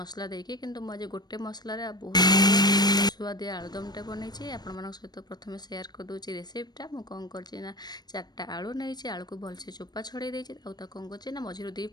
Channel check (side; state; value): right; late; 0.19 ms